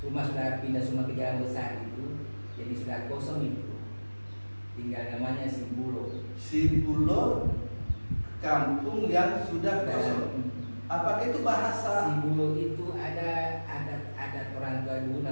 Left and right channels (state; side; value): inverted; both; correlation -1.00